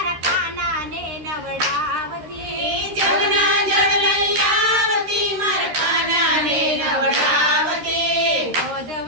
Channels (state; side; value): late; left; 13 ms